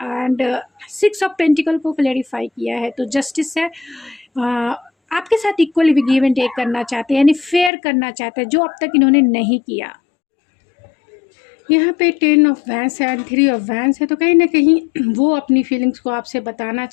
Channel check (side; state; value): right; drops out; at 7.7 s